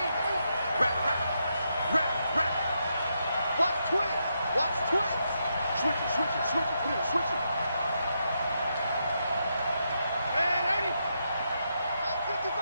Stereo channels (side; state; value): both; inverted; correlation -0.82